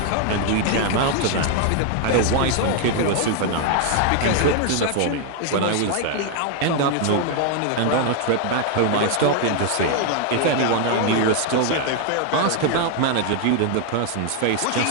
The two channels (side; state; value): both; different; correlation 0.00